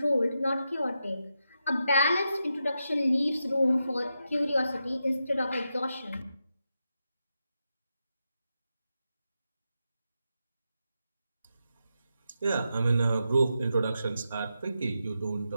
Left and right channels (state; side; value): inverted; both; correlation -0.87